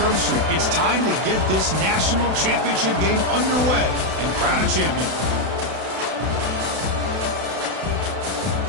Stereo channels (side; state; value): left; late; 32 ms